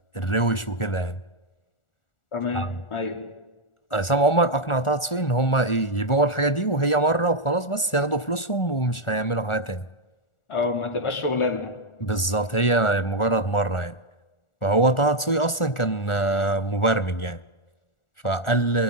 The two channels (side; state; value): right; late; 1.4 ms